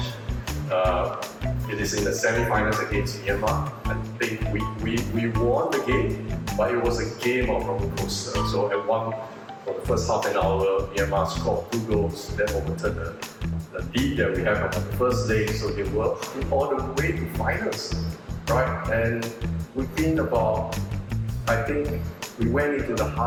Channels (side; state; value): both; identical; correlation 1.00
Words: It is in the semi-finals against Myanmar. I think we won the game, but it was a game of roller coaster. So at for the first half an hour, Myanmar scored 2 goals that overturned the lead that we have on the first leg. So they were all the way to finals, right? And within about, I think we went into the